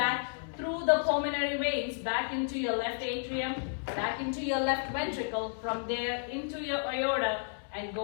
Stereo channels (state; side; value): silent; right; 56 dB below the other